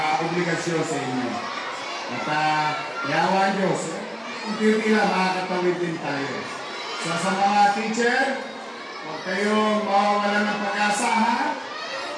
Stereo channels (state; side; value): identical; both; correlation 1.00